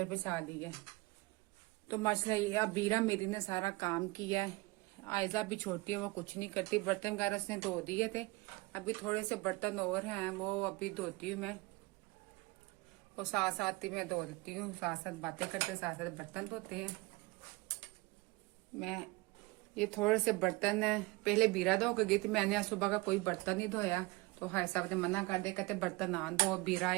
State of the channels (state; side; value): quieter; left; 23.6 dB